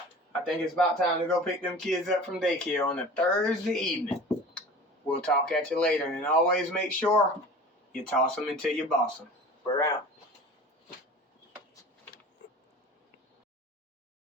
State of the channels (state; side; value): normal; both; correlation 0.39